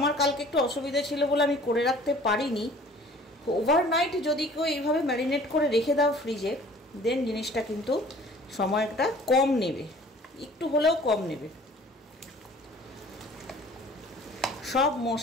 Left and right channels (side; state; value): both; normal; correlation 0.50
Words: কালকে একটু অসুবিধা ছিল বলে আমি করে রাখতে পারিনি। ওভারনাইট যদি কেউ এইভাবে ম্যারিনেট করে রেখে দাও ফ্রিজে, দেন জিনিসটা কিন্তু সময়টা কম নেবে, একটু হলেও কম নেবে। সব